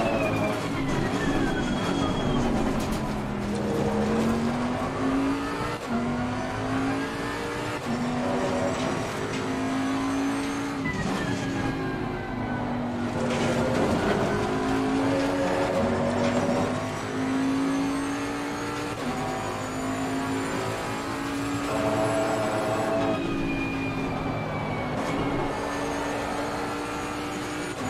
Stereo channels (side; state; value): both; identical; correlation 1.00